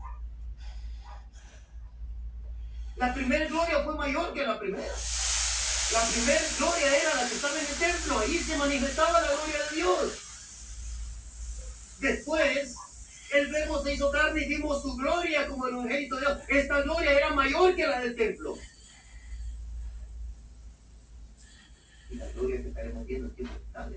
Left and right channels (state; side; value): identical; both; correlation 1.00